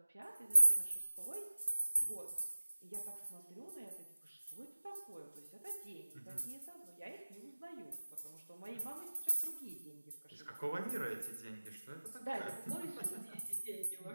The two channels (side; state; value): both; inverted; correlation -1.00